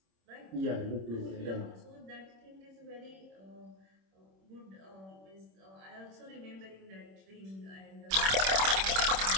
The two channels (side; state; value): left; late; 26 ms